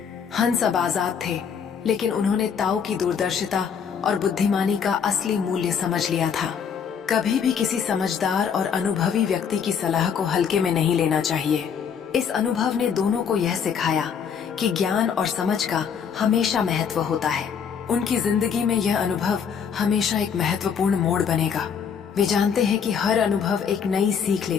हंस अब आजाद थे, लेकिन उन्होंने ताऊ की दूरदर्शिता और बुद्धिमानी का असली मूल्य समझ लिया था। कभी भी किसी समझदार और अनुभवी व्यक्ति की सलाह को हल्के में नहीं लेना चाहिए। इस अनुभव ने दोनों को यह सिखाया कि ज्ञान और समझ का हमेशा महत्व होता है। उनकी जिंदगी में यह अनुभव हमेशा एक महत्वपूर्ण मोड़ बनेगा। वे जानते हैं कि हर अनुभव एक नई सीख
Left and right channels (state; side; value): quieter; right; 7.1 dB